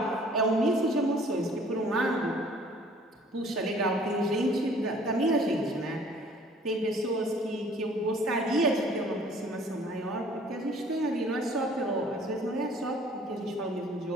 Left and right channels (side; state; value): both; normal; correlation 0.54